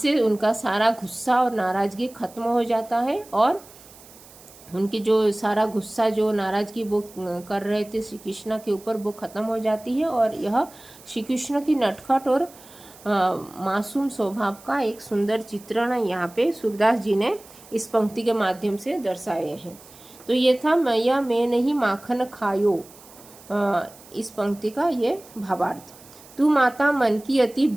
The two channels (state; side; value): noise; right; hiss, 22 dB below the sound